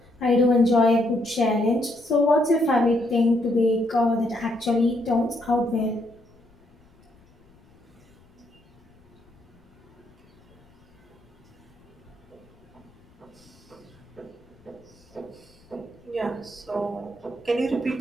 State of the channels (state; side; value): noise; left; rumble, 30 dB below the sound